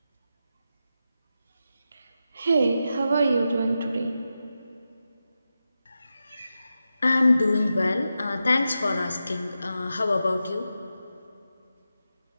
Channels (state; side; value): inverted; both; correlation -0.90